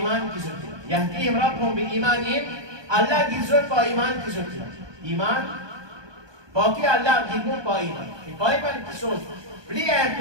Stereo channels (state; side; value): late; left; 1.2 ms